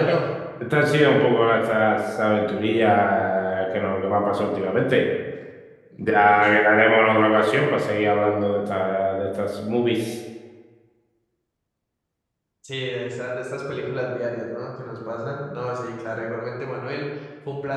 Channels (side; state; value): both; identical; correlation 1.00